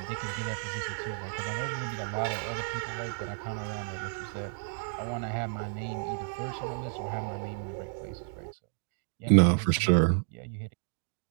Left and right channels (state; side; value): silent; left; digital silence